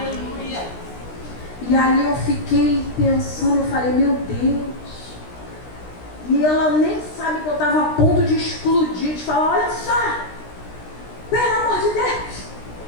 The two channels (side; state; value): right; late; 16 ms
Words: E ali eu fiquei pensando, eu falei, meu Deus. E ela nem sabe que eu estava a ponto de explodir, de falar, olha só, pelo amor de Deus.